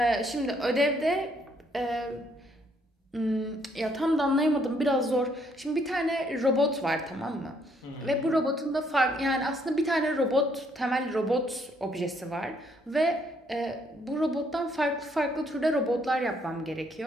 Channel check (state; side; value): normal; both; correlation 0.69